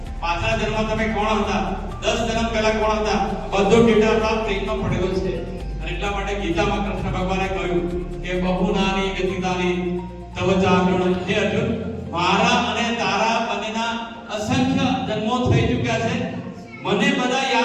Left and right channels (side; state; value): both; identical; correlation 1.00